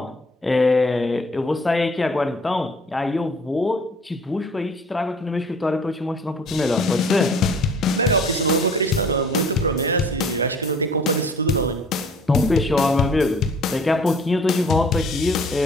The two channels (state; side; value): normal; both; correlation 0.52